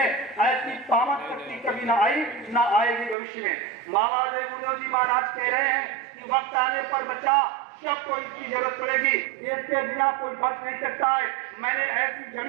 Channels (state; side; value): drops out; left; at 3.2 s